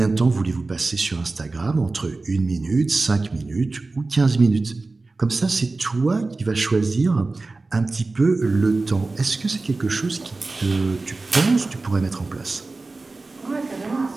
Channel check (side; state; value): left; quieter; 3.5 dB